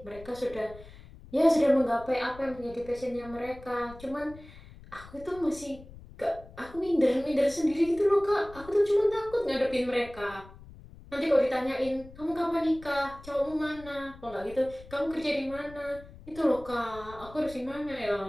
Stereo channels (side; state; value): left; noise; rumble, 19 dB below the sound